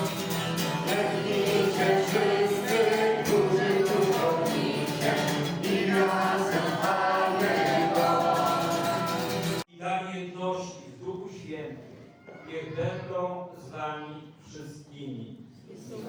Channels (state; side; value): identical; both; correlation 1.00